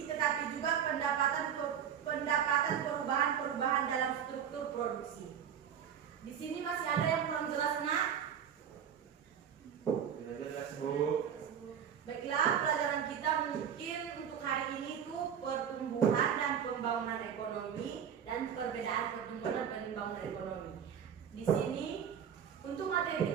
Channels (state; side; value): quieter; left; 8.4 dB